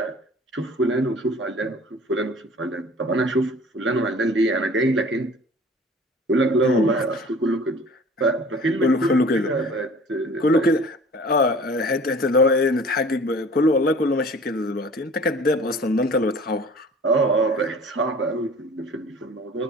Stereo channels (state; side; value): normal; both; correlation 0.46